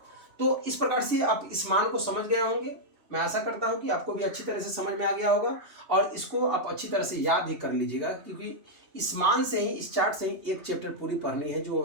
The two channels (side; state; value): left; late; 3.0 ms